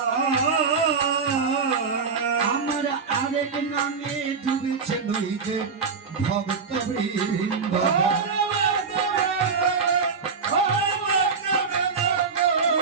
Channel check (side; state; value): left; quieter; 5.3 dB